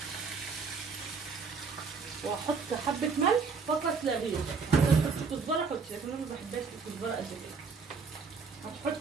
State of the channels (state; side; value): quieter; left; 5.0 dB